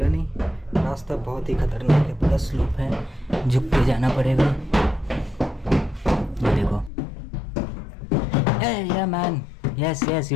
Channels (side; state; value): right; drops out; at 6.9 s